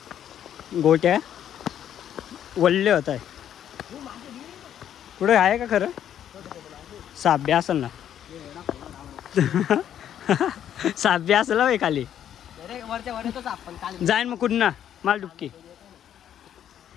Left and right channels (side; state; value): right; quieter; 10.1 dB